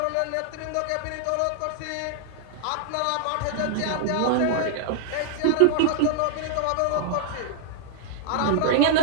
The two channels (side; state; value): both; different; correlation -0.01